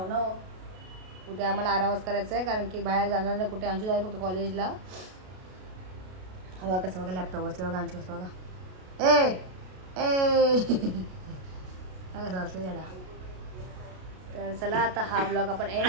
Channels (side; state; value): left; late; 33 ms